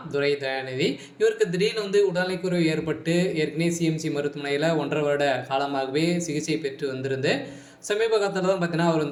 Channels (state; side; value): identical; both; correlation 1.00